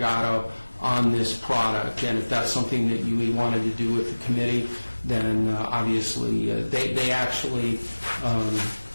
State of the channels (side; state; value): both; inverted; correlation -1.00